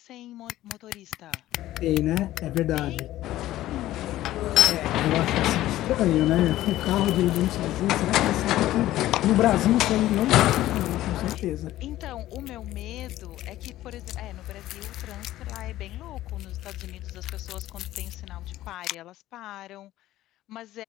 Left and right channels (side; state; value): right; quieter; 14.8 dB